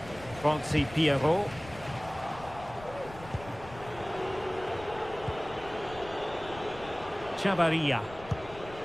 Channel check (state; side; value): noise; left; rumble, 17 dB below the sound